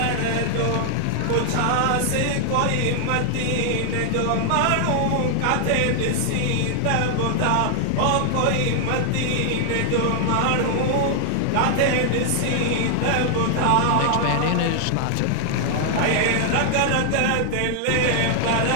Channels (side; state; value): both; different; correlation 0.00